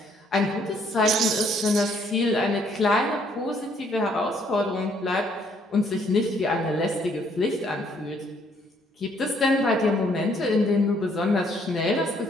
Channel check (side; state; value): both; normal; correlation 0.66